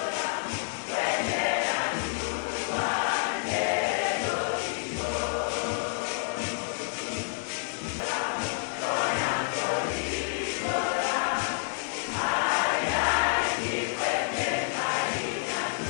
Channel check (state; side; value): silent; right; digital silence